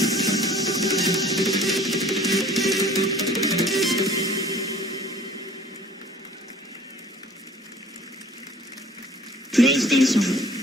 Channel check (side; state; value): both; normal; correlation 0.50